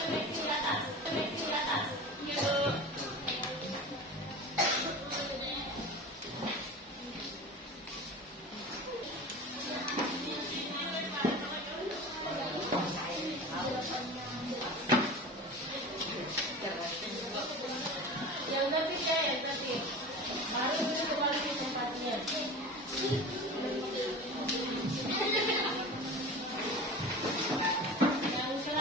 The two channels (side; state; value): both; normal; correlation 0.34